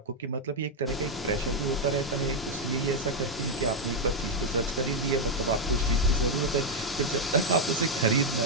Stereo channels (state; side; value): normal; both; correlation 0.01